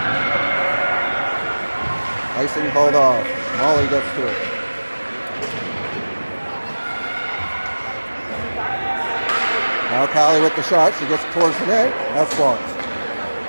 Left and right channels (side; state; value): both; inverted; correlation -1.00